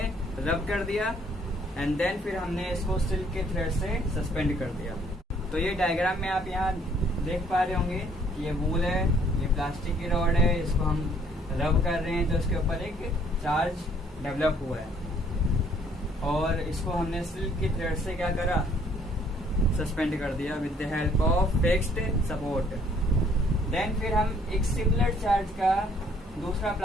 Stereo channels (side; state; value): both; normal; correlation 0.62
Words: रब कर दिया, एंड देन फिर हमने इसको सिल्क के थ्रेड से सस्पेंड कर दिया। तो ये डायग्राम में आप यहाँ देख पा रहे होंगे कि ये वूल है, ये प्लास्टिक की रॉड है, इसको हम रब कर रहे हैं तो इसके ऊपर एक चार्ज डेवलप हुआ है, और इसको हमने सिल्क की थ्रेड से क्या करा, सस्पेंड कर दिया with the help of fixed support. Then फिर हम एक सिमिलर चार्ज का दूसरा